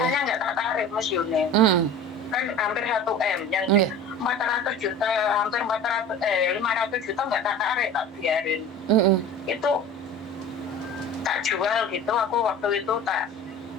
nggak tak tarik Miss Yuni. Kan hampir 1 M, yang 400 juta, hampir 500 juta nggak tak tarik, tak biarin. Itu tak jual gitu, aku waktu itu tak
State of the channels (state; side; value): normal; both; correlation 0.39